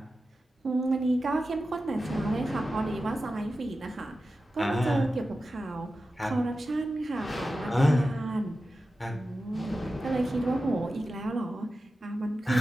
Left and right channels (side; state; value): both; normal; correlation 0.93